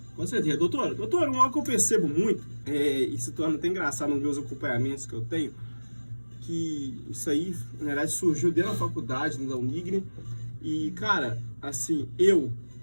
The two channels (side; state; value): both; inverted; correlation -1.00